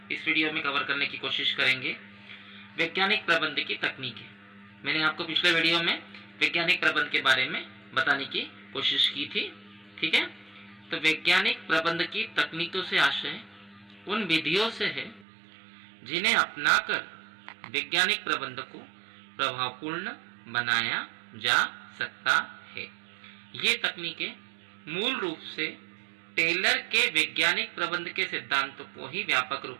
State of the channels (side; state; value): left; drops out; at 15.2 s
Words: इस वीडियो में कवर करने की कोशिश करेंगे। वैज्ञानिक प्रबंध की तकनीकें, मैंने आपको पिछले वीडियो में वैज्ञानिक प्रबंध के बारे में बताने की कोशिश की थी। ठीक है, तो वैज्ञानिक प्रबंध की तकनीकों से आशय उन विधियों से है जिन्हें अपनाकर वैज्ञानिक प्रबंध को प्रभावपूर्ण बनाया जा सकता है। ये तकनीकें मूल रूप से टेलर के वैज्ञानिक प्रबंध के सिद्धांतों को ही व्यापक रूप